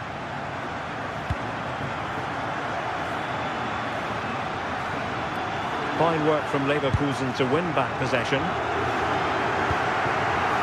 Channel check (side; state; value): both; identical; correlation 1.00